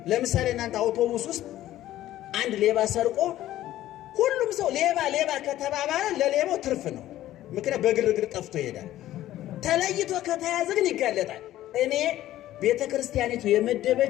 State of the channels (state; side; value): quieter; right; 14.0 dB